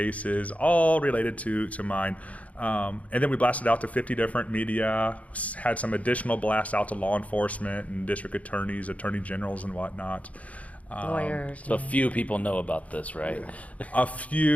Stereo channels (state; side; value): late; right; 0.068 ms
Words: all related to mine. And then we blasted out to 50 different media, had some additional blasts out to law enforcement and district attorneys, attorney generals, and whatnot. Lawyers. So few people know about this, right? A